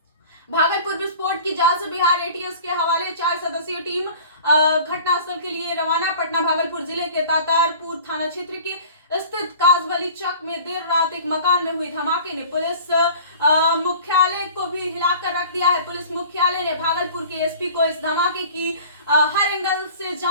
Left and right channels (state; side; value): inverted; both; correlation -0.44